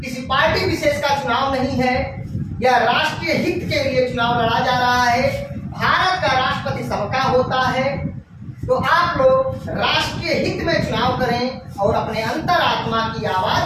किसी पार्टी विशेष का चुनाव नहीं है, यह राष्ट्रीय हित के लिए चुनाव लड़ा जा रहा है। भारत का राष्ट्रपति सबका होता है, तो आप लोग राष्ट्रीय हित में चुनाव करें और अपने अंतरात्मा की आवाज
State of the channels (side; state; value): both; identical; correlation 1.00